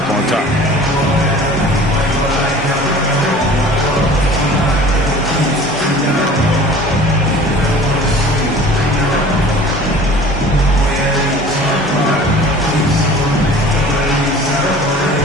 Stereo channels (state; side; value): normal; both; correlation 0.44